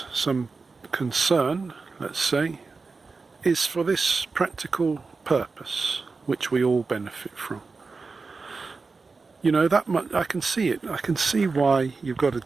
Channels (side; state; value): left; quieter; 4.3 dB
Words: some concern, let's say, is for this practical purpose, which we all benefit from. You know, that much, I can see it. I can see why you've got to